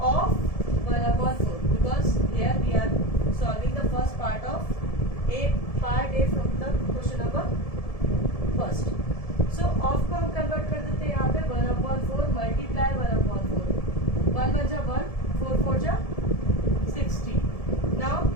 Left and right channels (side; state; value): right; late; 1.7 ms